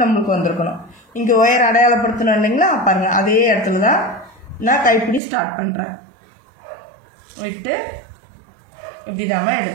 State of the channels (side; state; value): left; drops out; at 5.2 s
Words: நம்மளுக்கு வந்திருக்கணும். இங்கே ஒயர் அடையாளப்படுத்தணும் இல்லைங்களா? பாருங்கள், அதே இடத்துல தான் நான் கைப்பிடி ஸ்டார்ட் பண்ணுறேன். விட்டு இப்படி நம்ம